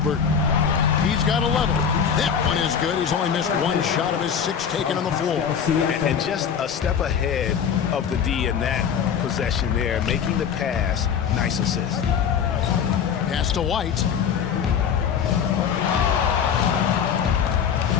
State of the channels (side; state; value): right; quieter; 7.5 dB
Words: He's got 11. That one is good. He's only missed 1 shot of his 6 taken on the floor. And just a step ahead of the D in that possession there, making the pass. Nice assist. Pass to White.